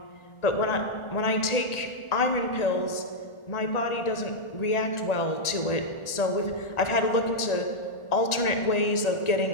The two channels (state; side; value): late; right; 1.4 ms